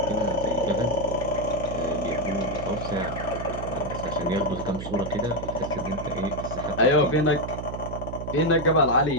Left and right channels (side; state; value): right; noise; hum, 8 dB below the sound